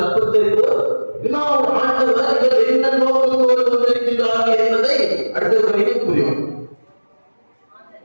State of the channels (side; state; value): both; inverted; correlation -1.00